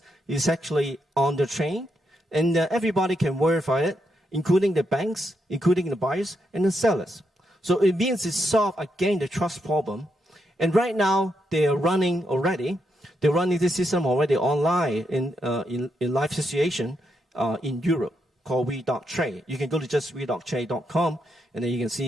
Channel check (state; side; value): normal; both; correlation 0.81